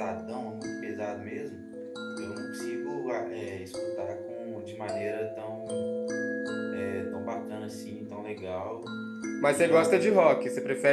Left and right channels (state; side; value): identical; both; correlation 1.00